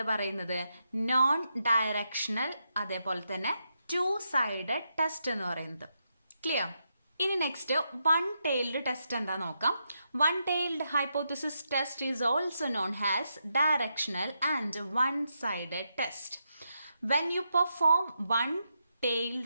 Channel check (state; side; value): inverted; both; correlation -0.83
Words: പറയുന്നത്? നോൺ ഡയറക്ഷണൽ, അതേപോലെ തന്നെ 2 സൈഡഡ് ടെസ്റ്റ് എന്ന് പറയുന്നത്. ക്ലിയർ? ഇനി നെക്സ്റ്റ് വൺ ടൈൽഡ് ടെസ്റ്റ് എന്താ നോക്കാം. One tailed hypothesis test is also known as directional and one sided test. When you perform